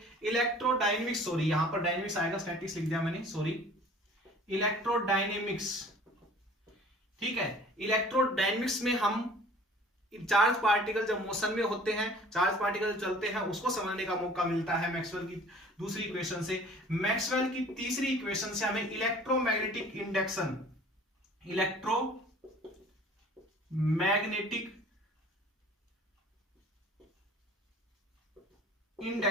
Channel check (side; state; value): both; normal; correlation 0.49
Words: इलेक्ट्रोडायनेमिक्स, सॉरी यहां पर डायनेमिक्स आएगा, स्टैटिक्स लिख दिया मैंने, सॉरी, इलेक्ट्रोडायनेमिक्स, ठीक है। इलेक्ट्रोडायनेमिक्स में हम चार्ज पार्टिकल जब मोशन में होते हैं, चार्ज पार्टिकल चलते हैं, उसको समझने का मौका मिलता है मैक्सवेल की दूसरी इक्वेशन से। मैक्सवेल की तीसरी इक्वेशन से हमें इलेक्ट्रोमैग्नेटिक इंडक्शन, इलेक्ट्रोमैग्नेटिक